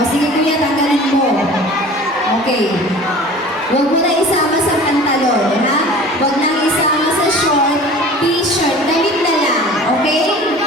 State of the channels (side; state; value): both; normal; correlation 0.42